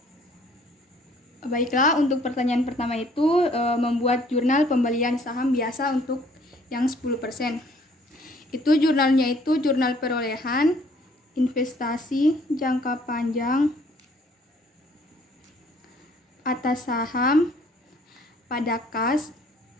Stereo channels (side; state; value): both; normal; correlation 0.60